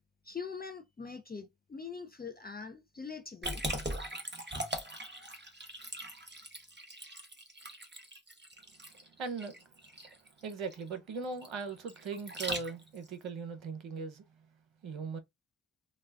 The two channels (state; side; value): normal; both; correlation 0.31